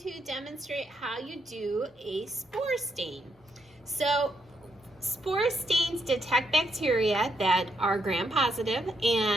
demonstrate how you do a spore stain. So spore stains detect bacteria that are gram-positive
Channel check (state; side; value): normal; both; correlation 0.78